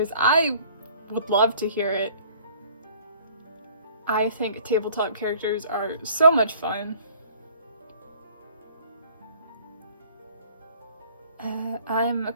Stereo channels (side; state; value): both; inverted; correlation -0.54